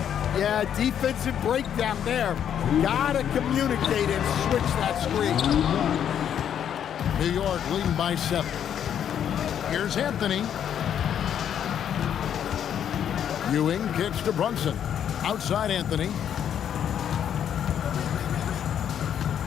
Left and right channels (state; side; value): quieter; right; 9.2 dB